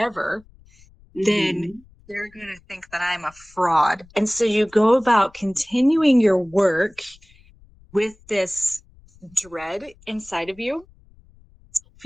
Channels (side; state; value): left; noise; rumble, 27 dB below the sound